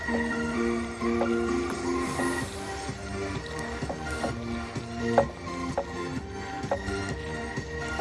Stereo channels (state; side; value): identical; both; correlation 1.00